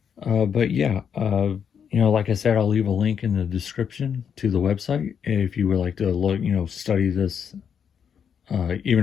But yeah, like I said, I'll leave a link in the description to the website if you would like to look, study this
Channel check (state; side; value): quieter; right; 7.5 dB